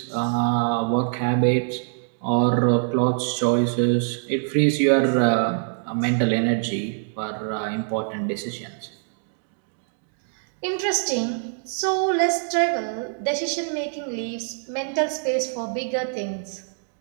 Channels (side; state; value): left; silent; 62 dB below the other